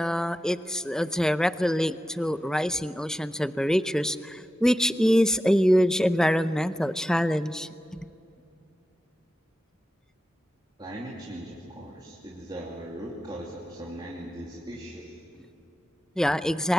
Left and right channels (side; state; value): both; normal; correlation 0.92